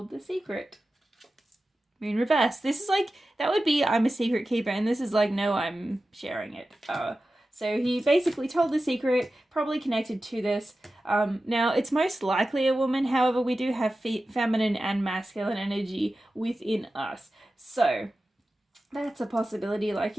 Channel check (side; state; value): both; normal; correlation 0.94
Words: the secret. In reverse. This is like, that would be I'm a secret keeper, and this is like, no, I'm sharing it. So he basically told the secret, probably connected to this. Now, it's most likely a woman. However, we do have feminine and masculine energy within us. So that's a possibility. Like,